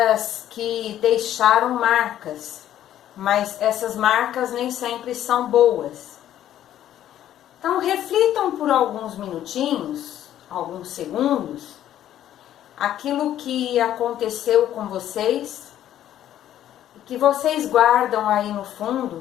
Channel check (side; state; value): right; quieter; 11.7 dB